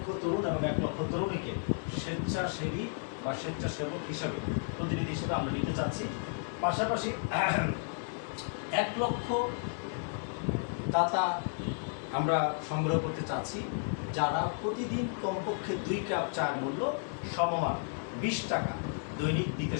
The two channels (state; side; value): silent; right; 56 dB below the other